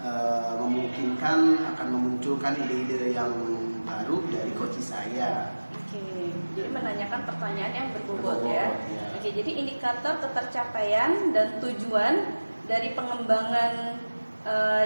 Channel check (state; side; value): inverted; both; correlation -1.00